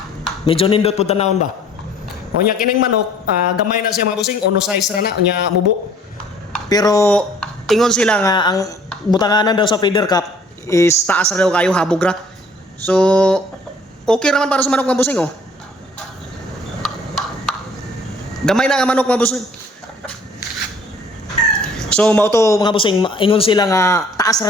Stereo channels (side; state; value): both; normal; correlation 0.55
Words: medyo nindot pud tanawon ba. Unya kining manok, gamay na siya mga busing, ono size ra na unya mubo. Pero ingon sila nga ang butanganan daw sa feeder cup is taas ra daw kayo habog ra. So okay naman para sa manok mga busing oh. Gamay na nga manok mga busing. So mao to mga busing, ingon sila nga taas